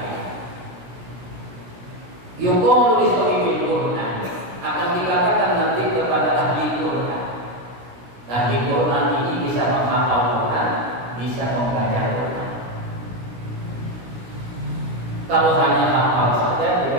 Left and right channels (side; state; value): left; late; 16 ms